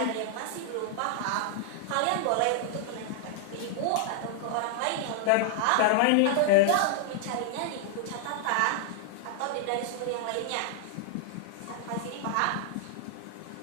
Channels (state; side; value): different; both; correlation 0.00